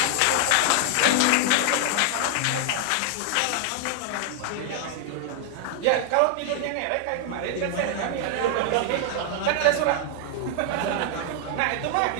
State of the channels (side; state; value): both; different; correlation 0.00